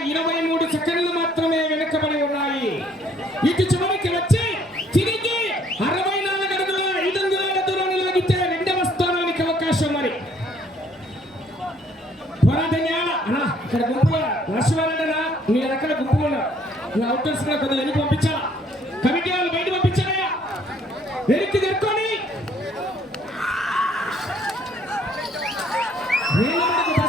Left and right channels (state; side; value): normal; both; correlation 0.63